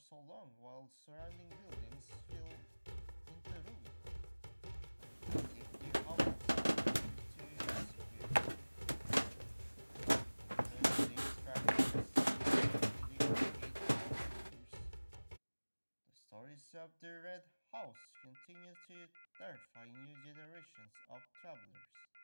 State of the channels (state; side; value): inverted; both; correlation -1.00